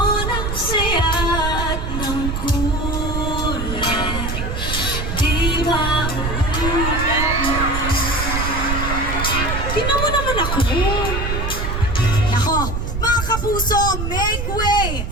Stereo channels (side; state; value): right; noise; rumble, 3 dB below the sound